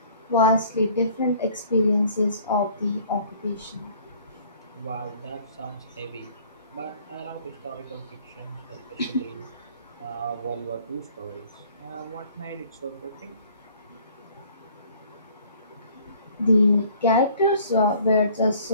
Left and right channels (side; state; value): both; inverted; correlation -0.55